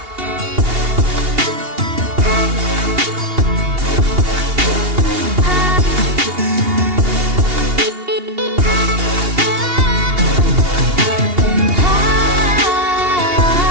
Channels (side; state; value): left; late; 2.8 ms